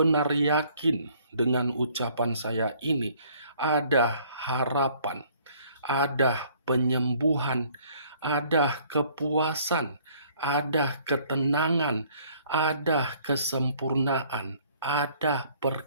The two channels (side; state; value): both; inverted; correlation -0.59